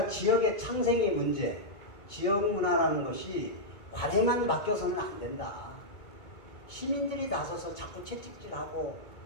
지역의 창생의 문제, 지역 문화라는 것이 관에만 맡겨서는 안 된다. 시민들이 나서서 자꾸 채찍질하고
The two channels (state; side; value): late; right; 1.9 ms